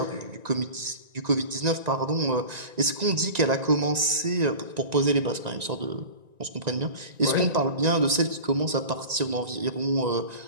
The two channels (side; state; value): left; late; 1.9 ms